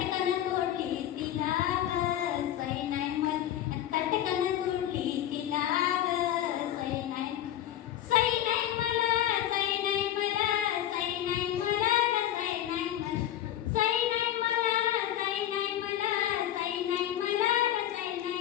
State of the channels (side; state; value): right; quieter; 11.8 dB